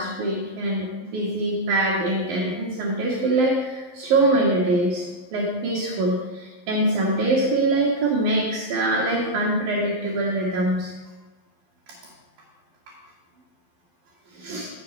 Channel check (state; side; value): late; left; 12 ms